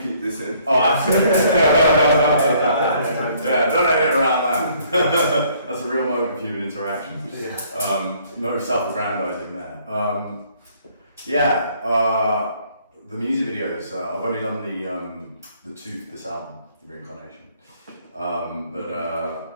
keep this in. Oh, absolutely. Yeah, don't edit around that. That's a real moment of human interaction. Yeah. No self-aggrandizing there. The music videos. I've only done the two for this album, Reincarnation. But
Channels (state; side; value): inverted; both; correlation -0.63